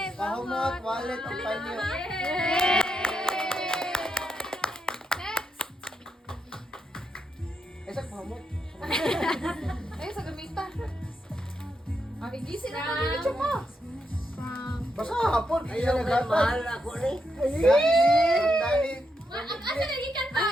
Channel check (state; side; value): normal; both; correlation 0.82